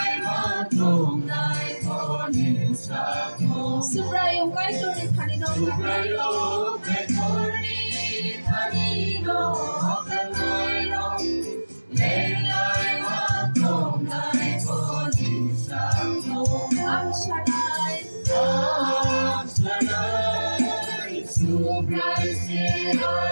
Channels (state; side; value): inverted; both; correlation -1.00